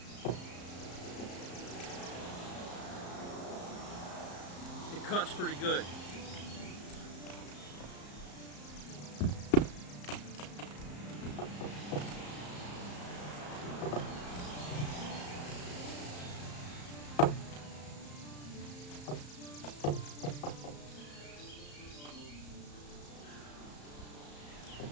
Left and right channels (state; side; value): late; right; 34 ms